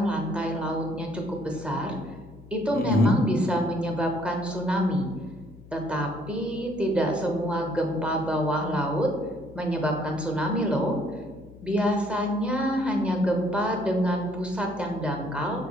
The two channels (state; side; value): noise; left; hum, 20 dB below the sound